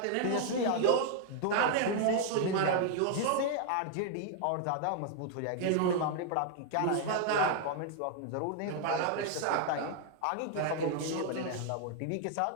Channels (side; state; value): both; different; correlation 0.00